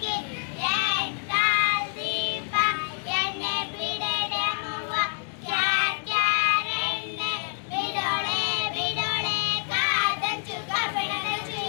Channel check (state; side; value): silent; right; digital silence